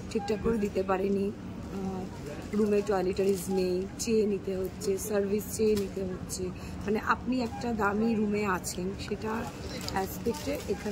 ঠিকঠাক করে দিতে পারেনি, রুমে টয়লেটারিজ নেই, চেয়ে নিতে হচ্ছে, সার্ভিস চেয়ে নিতে হচ্ছে। মানে আপনি একটা দামি রুমে আছেন, সেটা অ্যাসপেক্টে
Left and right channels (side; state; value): both; identical; correlation 1.00